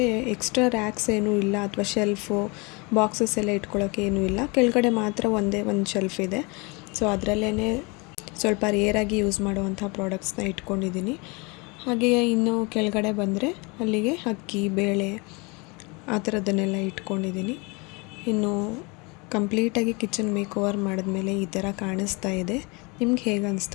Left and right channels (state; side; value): quieter; right; 28.6 dB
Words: ಎಕ್ಸ್ಟ್ರಾ ರ್ಯಾಕ್ಸ್ ಏನೂ ಇಲ್ಲ, ಅಥವಾ ಶೆಲ್ಫು ಬಾಕ್ಸಸ್ ಎಲ್ಲ ಇಟ್ಕೊಳ್ಳೋಕೆ ಏನೂ ಇಲ್ಲ. ಕೆಳಗಡೆ ಮಾತ್ರ ಒಂದೇ ಒಂದು ಶೆಲ್ಫ್ ಇದೆ. ಸೊ ಅದರಲ್ಲೇ ಸ್ವಲ್ಪ ರೇರಾಗಿ ಯೂಸ್ ಮಾಡುವಂಥ ಪ್ರಾಡಕ್ಟ್ಸ್ನ ಇಟ್ಕೊಂಡಿದ್ದೀನಿ. ಹಾಗೆ ಇನ್ನು ಕೆಳಗಡೆ ಬಂದರೆ ಅಲ್ಲಿಗೆ ಅಕ್ಕಿ ಬೇಳೆ ಆ ಥರದ್ದನ್ನೆಲ್ಲ ಇಟ್ಕೊಂಡಿದ್ದೀನಿ. ಇನ್ನು ಕಂಪ್ಲೀಟಾಗಿ ಕಿಚನ್ ಮೇಕ್ ಓವರ್ ಮಾಡಿದ್ಮೇಲೆ ಈ ಥರ ಕಾಣಿಸ್ತಾ ಇದೆ. ನಿಮ್ಗೆ ಹೇಗೆ